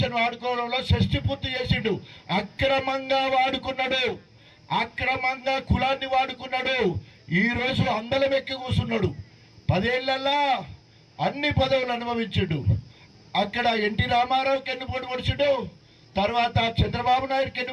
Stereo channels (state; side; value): identical; both; correlation 1.00